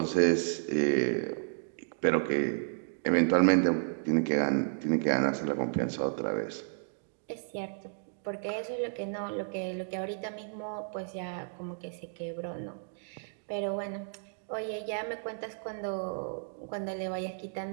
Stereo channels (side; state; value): left; silent; digital silence